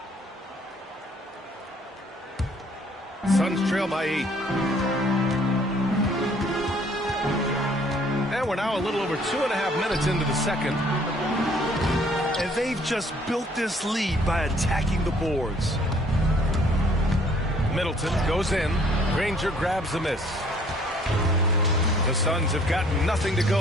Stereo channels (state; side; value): normal; both; correlation 0.59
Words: Suns trail by 8. And we're now a little over 2.5 minutes into the second. And they've just built this lead by attacking the boards. Middleton goes in. Granger grabs the miss. The Suns have gotten nothing to